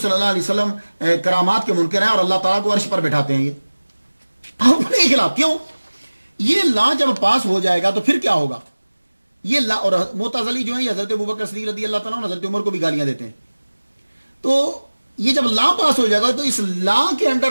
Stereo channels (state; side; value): inverted; both; correlation -1.00